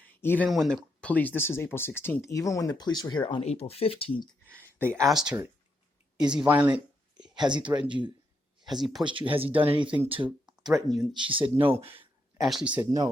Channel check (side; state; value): both; normal; correlation 0.80